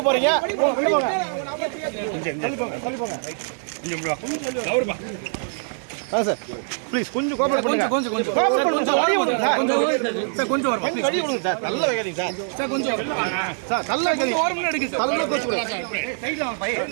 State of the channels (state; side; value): silent; left; 63 dB below the other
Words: போறீங்க. Sir please கொஞ்சம் கோஆபரேட் பண்ணுங்க. கொஞ்சம் கோஆபரேட் பண்ணுங்க சார். வழி விடுங்க சார். கொஞ்சம் வரமா ப்ளீஸ். வழி விடுங்க சார். நல்ல வைக்காதீங்க சார். சார் கொஞ்சம் சார் நல்ல வைக்காதீங்க. ஒரு மினிட் எடுங்க சார். நல்ல கோச்சு விடுங்க. சைடுல வாங்க பைய.